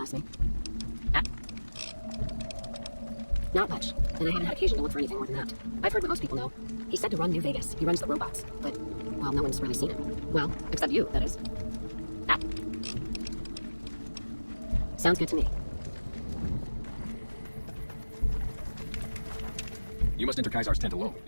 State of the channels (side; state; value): both; inverted; correlation -1.00